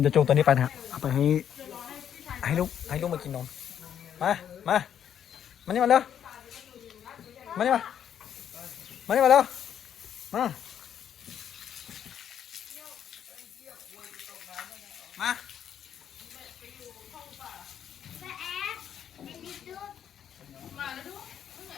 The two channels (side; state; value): right; quieter; 9.3 dB